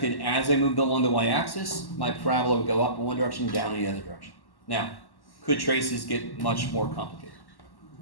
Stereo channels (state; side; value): late; right; 1.1 ms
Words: as I moved along the y-axis, my parabola would go up in one direction, down in the other direction. Now, could traces get much more complicated?